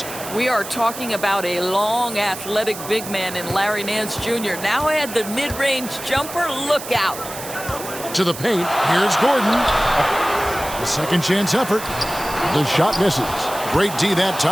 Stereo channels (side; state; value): right; noise; hiss, 11 dB below the sound